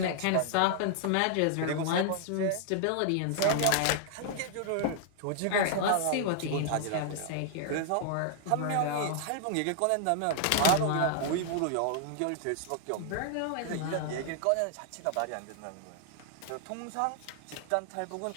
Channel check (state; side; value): different; both; correlation 0.00